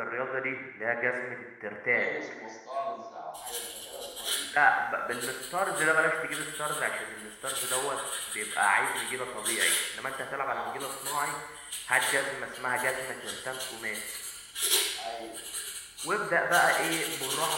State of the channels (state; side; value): identical; both; correlation 1.00